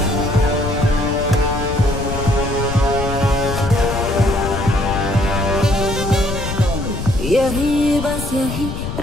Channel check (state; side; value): noise; left; rumble, 5 dB below the sound